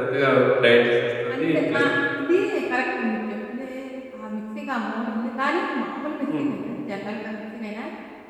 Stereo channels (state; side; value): identical; both; correlation 1.00